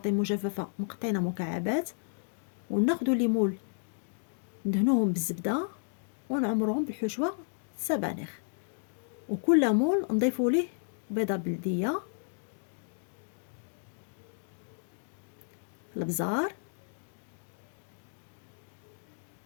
مجففة مقطعينها مكعبات، وناخدو ليمون ندهنوهم بالزبدة ونعمروهم بالحشوة السبانخ. وكل مول نضيفوا ليه بيضة بلدية، البزار،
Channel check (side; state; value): right; silent; digital silence